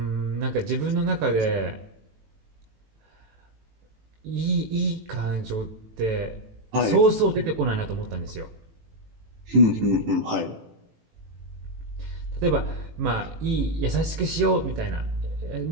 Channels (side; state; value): left; late; 18 ms